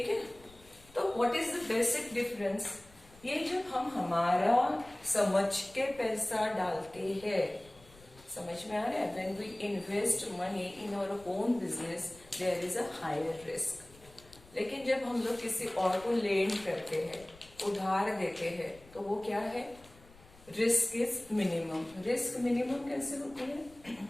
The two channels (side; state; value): left; noise; rumble, 24 dB below the sound